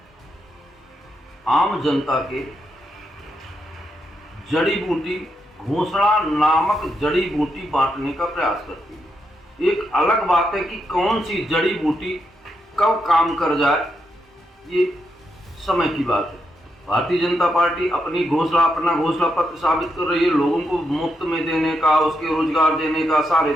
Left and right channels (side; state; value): both; normal; correlation 0.82